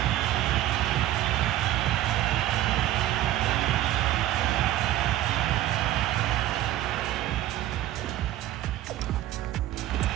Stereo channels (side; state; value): left; quieter; 13.8 dB